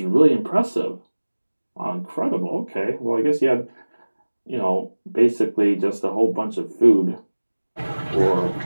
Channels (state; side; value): inverted; both; correlation -1.00